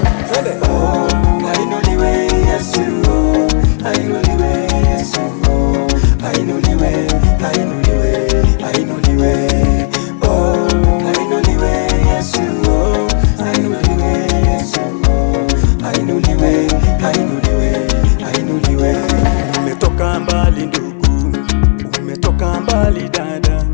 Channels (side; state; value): right; silent; 60 dB below the other